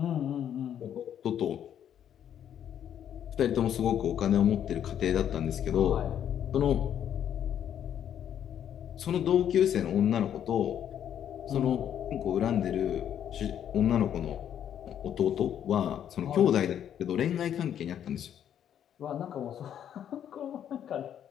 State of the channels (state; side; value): quieter; right; 9.7 dB